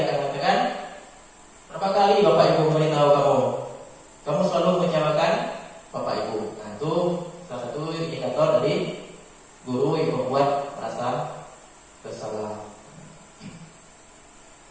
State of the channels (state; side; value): identical; both; correlation 1.00